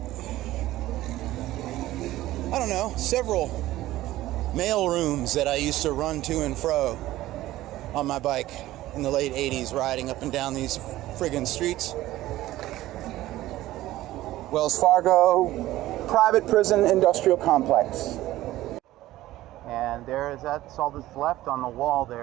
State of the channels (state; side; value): quieter; left; 15.7 dB